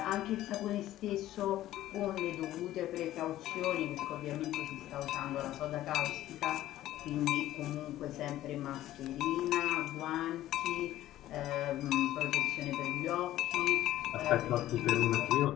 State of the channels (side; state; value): right; quieter; 14.1 dB